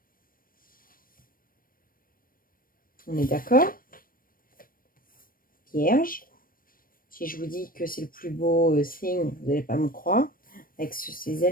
On est d'accord. Vierge. Si je vous dis que c'est le plus beau signe, vous n'allez pas me croire. Avec ces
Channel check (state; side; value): late; right; 0.41 ms